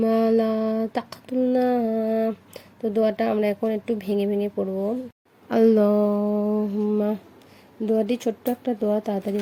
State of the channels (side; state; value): both; identical; correlation 1.00